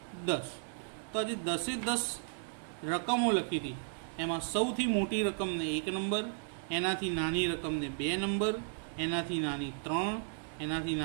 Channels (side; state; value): left; silent; digital silence